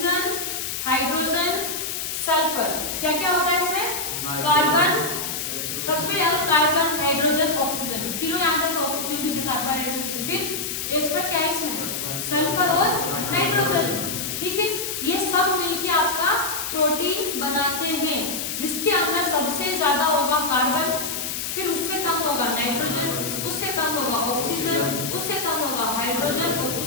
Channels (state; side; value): noise; left; hiss, 4 dB below the sound